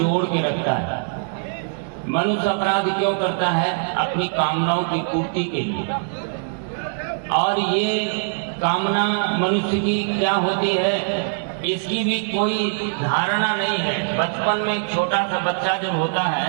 के रखता है। मनुष्य अपराध क्यों करता है? अपनी कामनाओं की पूर्ति के लिए। और ये कामना मनुष्य की क्या होती है, इसकी भी कोई धारणा नहीं है। बचपन में एक छोटा सा बच्चा जब होता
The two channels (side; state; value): left; silent; digital silence